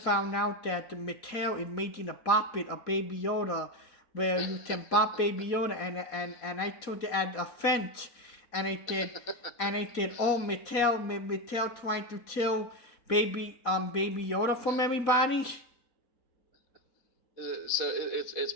out that Mattel is making a Bop-It, a Baby Yoda, where you can bop Baby Yoda, and I took it as a offense, and I said, oh, Mattel trying to kill Baby Yoda from everybody. So it's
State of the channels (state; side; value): late; right; 4.1 ms